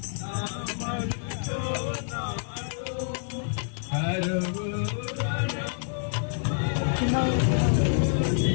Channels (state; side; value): silent; right; 60 dB below the other